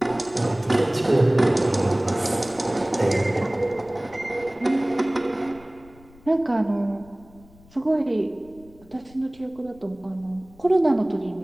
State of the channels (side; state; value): left; noise; rumble, 25 dB below the sound